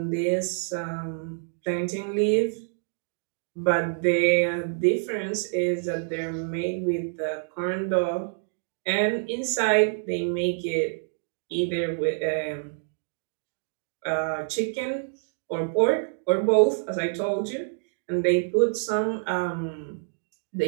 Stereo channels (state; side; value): silent; left; digital silence